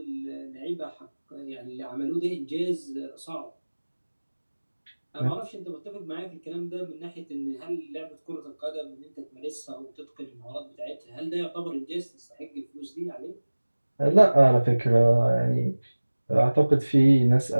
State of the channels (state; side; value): inverted; both; correlation -1.00